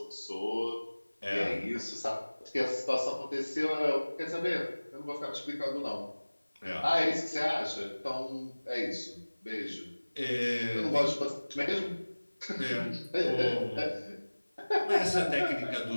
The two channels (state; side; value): inverted; both; correlation -1.00